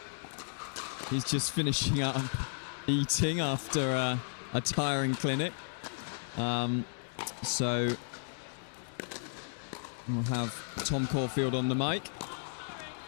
He's just finishing up eating after a tiring clinic. So we'll have Tom Corfield on the mic.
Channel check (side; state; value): right; silent; 55 dB below the other